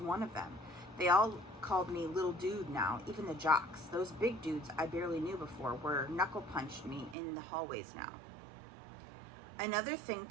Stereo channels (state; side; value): drops out; left; at 7.2 s